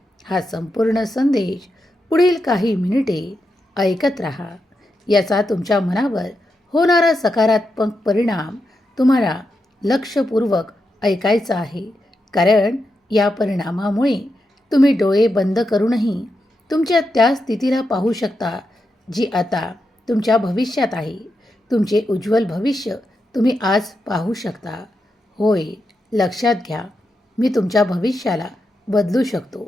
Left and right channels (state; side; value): normal; both; correlation 0.86